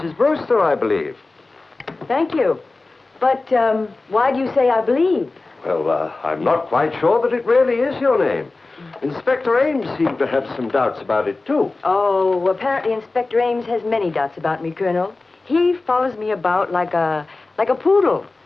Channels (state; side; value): quieter; right; 3.4 dB